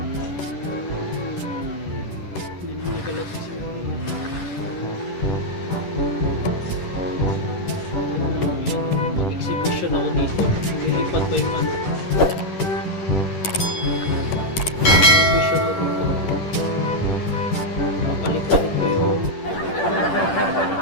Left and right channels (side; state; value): right; late; 10 ms